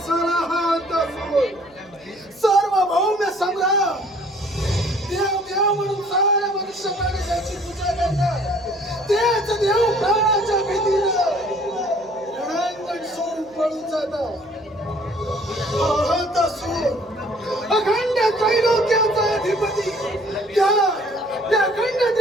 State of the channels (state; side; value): noise; right; hum, 29 dB below the sound